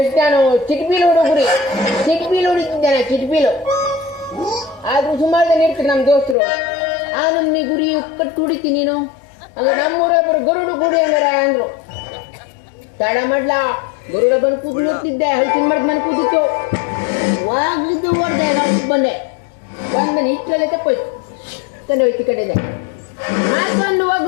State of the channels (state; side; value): drops out; right; at 6.4 s